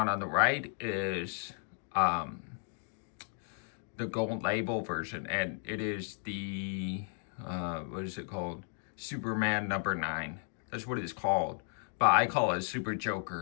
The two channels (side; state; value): right; silent; 55 dB below the other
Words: on the right is the gold label version, and it is the what is it called? Superman number 9. That's what it's called, but I call it Super